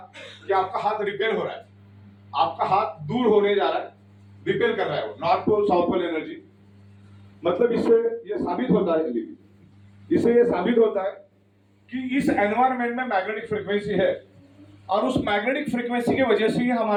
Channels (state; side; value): identical; both; correlation 1.00